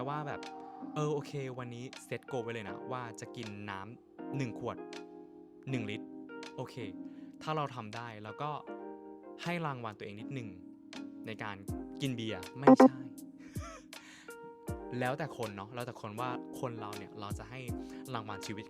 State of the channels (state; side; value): identical; both; correlation 1.00